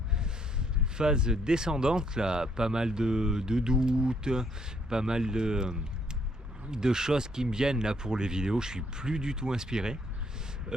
phase descendante, là. Pas mal de doutes, pas mal de choses qui me viennent, là, pour les vidéos. Je suis plus du tout inspiré.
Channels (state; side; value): normal; both; correlation 0.69